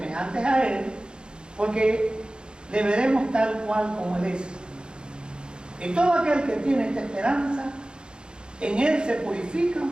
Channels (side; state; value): left; late; 0.050 ms